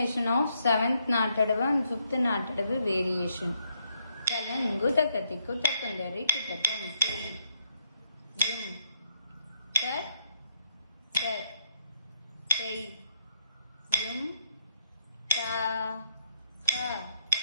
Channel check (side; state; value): both; inverted; correlation -0.77